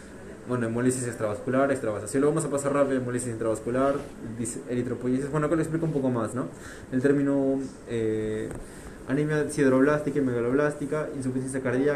Bueno, hemólisis extravascular, extravasación. Lo vamos a pasar rápido: hemólisis intravascular, eritropoyesis. Bueno, acá lo explico un poco más, ¿no? El término anemia sideroblástica y megaloblástica, insuficiencia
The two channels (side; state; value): both; identical; correlation 1.00